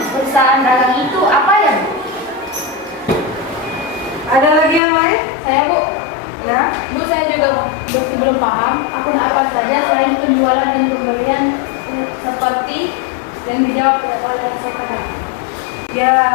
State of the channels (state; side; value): drops out; right; at 4.8 s